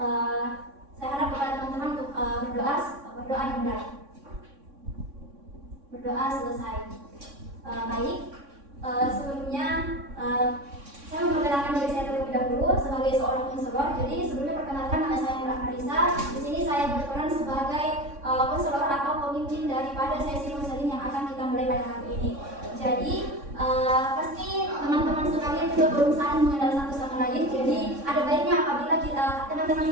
Saya harap kepada teman-teman untuk berdoa dimulai. Berdoa selesai. Baik. Sebelumnya saya memperkenalkan diri saya terlebih dahulu sebagai seorang konselor. Jadi sebelumnya perkenalkan nama saya Nur Marisa. Di sini saya berperan sebagai konselor atau pemimpin daripada sesi konseling yang akan kita mulai pada hari ini. Jadi pasti teman-teman sekalian juga belum saling mengenal satu sama lain. Jadi ada baiknya apabila teman-teman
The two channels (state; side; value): late; left; 3.6 ms